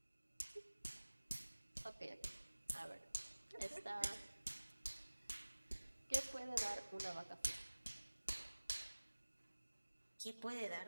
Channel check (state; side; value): inverted; both; correlation -1.00